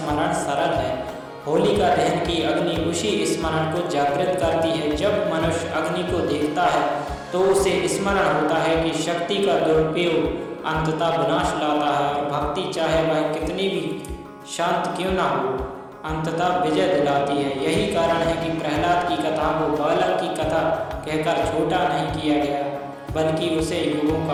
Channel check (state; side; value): identical; both; correlation 1.00